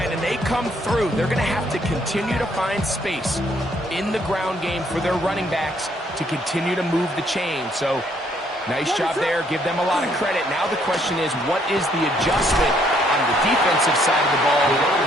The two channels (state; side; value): normal; both; correlation 0.68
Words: and they come through. They're going to have to continue to find space in the ground game for their running backs to continue to move the chain. So, nice job there. Give them a lot of credit. Now the question is, what is the adjustment on the defensive side of the ball